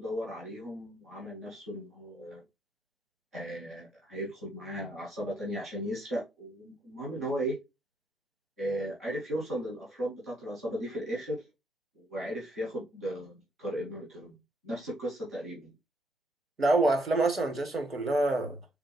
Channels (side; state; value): both; normal; correlation 0.72